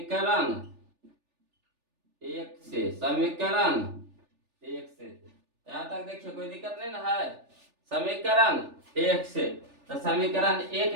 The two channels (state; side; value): late; left; 3.4 ms